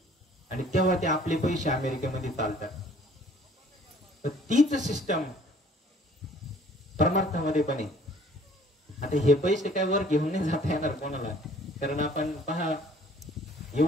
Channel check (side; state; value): both; normal; correlation 0.56